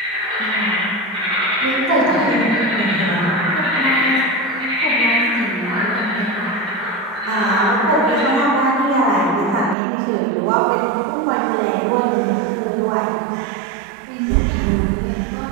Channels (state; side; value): drops out; left; at 9.8 s